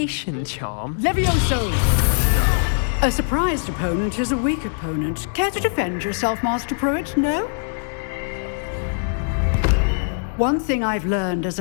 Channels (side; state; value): right; silent; digital silence